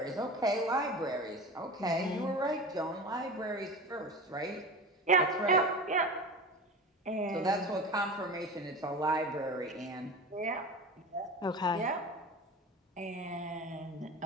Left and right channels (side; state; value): both; normal; correlation 0.31